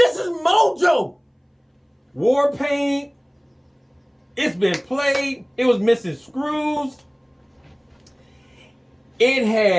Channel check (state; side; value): identical; both; correlation 1.00